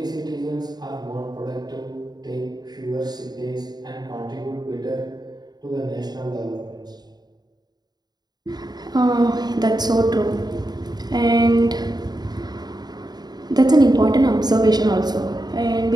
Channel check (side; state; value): left; late; 0.20 ms